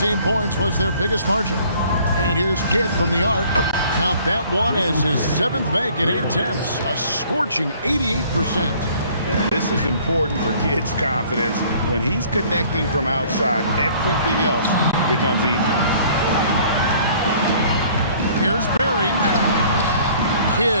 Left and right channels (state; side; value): inverted; both; correlation -0.55